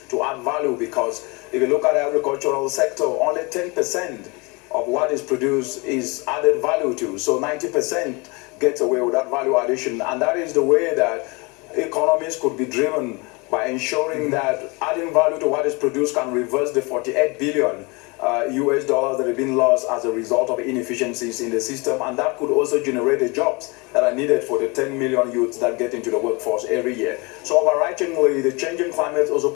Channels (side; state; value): right; quieter; 27.7 dB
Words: to add value, because if you look at the agricultural sector, only 10% of what is produced is added value to. So 90% gets away with that value addition. And that is the way that economies could be driven, by ensuring that adding value to what is produced can reverse the $48 billion US that have been lost as a result of inefficiencies in the system, and that could also generate the jobs that are needed for the 10 million youths that get into the workforce every year. So overarchingly, the changing climate also